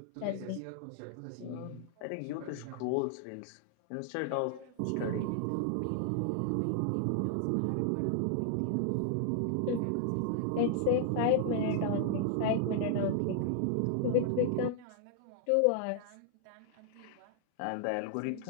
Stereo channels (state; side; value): different; both; correlation 0.00